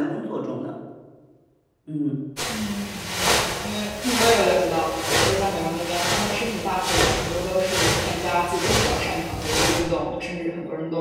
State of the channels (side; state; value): both; identical; correlation 1.00